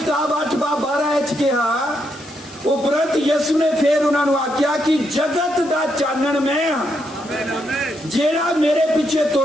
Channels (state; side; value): noise; left; hiss, 20 dB below the sound